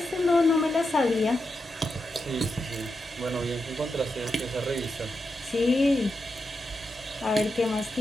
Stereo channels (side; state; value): both; normal; correlation 0.87